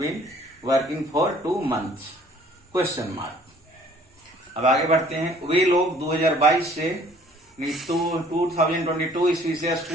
working for 2 months question mark. अब आगे बढ़ते हैं। वे लोग 2022 से 2022 ईस्वी से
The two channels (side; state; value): both; normal; correlation 0.56